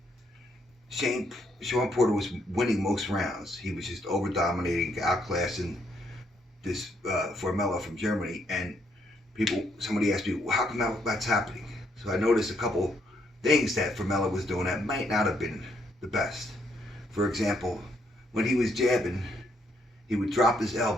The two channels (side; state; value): both; normal; correlation 0.73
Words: Shawn Porter was winning most rounds. He was just over-dominating, outclassing this Formella from Germany, and somebody asked me, well, how come that's happening? So I noticed a couple things that Formella was doing that might not have been the best. For example, when he was jabbing, he would drop his